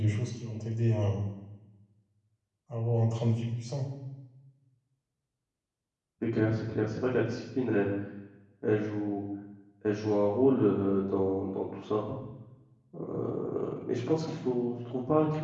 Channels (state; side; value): identical; both; correlation 1.00